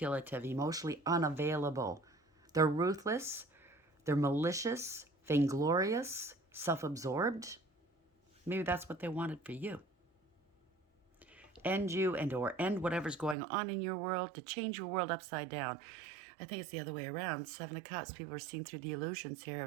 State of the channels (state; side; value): drops out; left; at 13.4 s